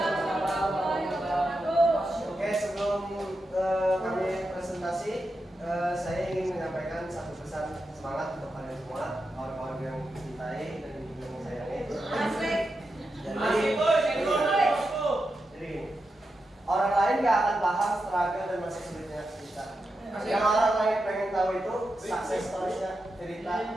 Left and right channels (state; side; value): normal; both; correlation 0.88